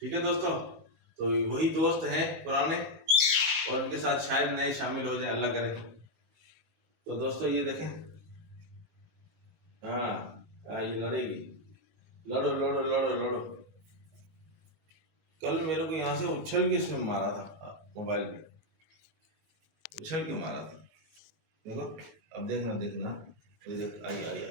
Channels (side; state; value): left; late; 19 ms